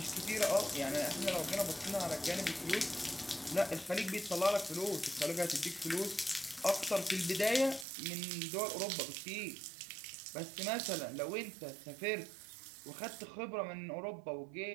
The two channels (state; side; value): drops out; left; at 7.9 s